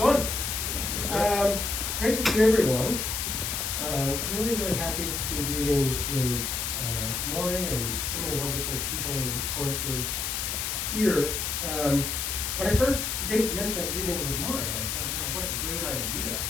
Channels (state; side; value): noise; left; hiss, 1 dB below the sound